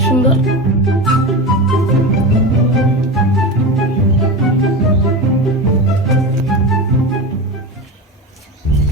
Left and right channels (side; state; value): both; normal; correlation 0.24